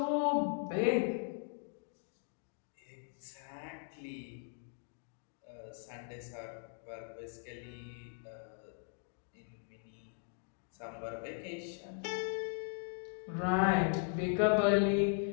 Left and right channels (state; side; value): silent; right; 52 dB below the other